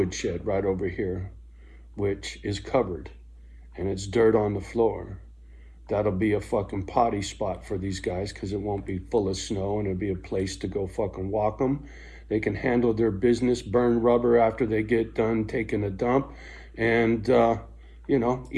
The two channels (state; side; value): identical; both; correlation 1.00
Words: shed right over here, which is covered and it's dirt on the floor. That'll be a fucking potty spot for these guys because it won't be full of snow and it'll be a place to go fucking walk them. They can handle their business, burn rubber after they get done taking a dump, and,